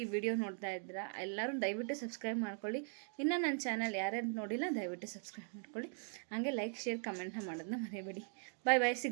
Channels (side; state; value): left; silent; 51 dB below the other